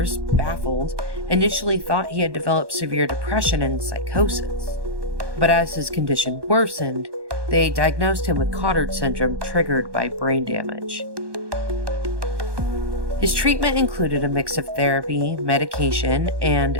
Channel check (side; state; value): left; late; 1.2 ms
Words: baffled, initially thought he had developed severe depression and psychosis. But as his condition worsened, they diagnosed him with Cotard syndrome triggered by brain damage. His treatment included a mix of therapy, medication, and